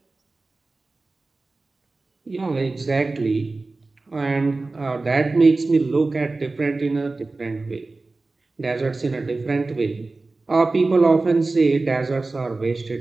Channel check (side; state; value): left; quieter; 3.4 dB